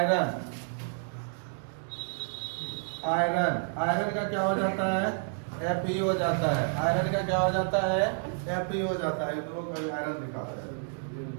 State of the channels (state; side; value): silent; left; 58 dB below the other